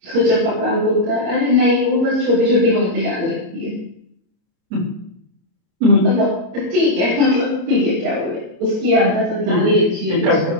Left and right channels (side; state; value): left; late; 33 ms